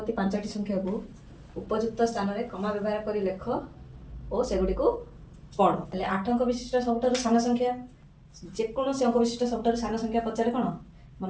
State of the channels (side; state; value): both; identical; correlation 1.00